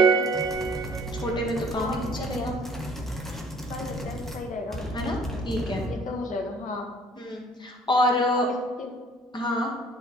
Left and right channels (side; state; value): both; normal; correlation 0.54